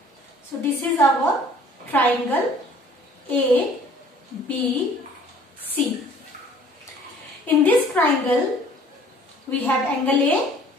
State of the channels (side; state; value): both; normal; correlation 0.54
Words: So this is our triangle A, B, C. In this triangle we have angle A,